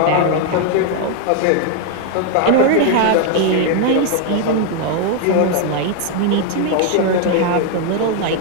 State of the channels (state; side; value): different; both; correlation 0.00